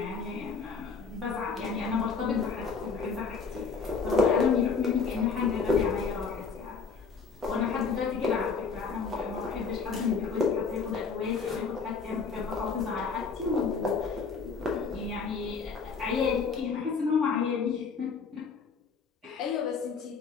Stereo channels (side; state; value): right; quieter; 5.2 dB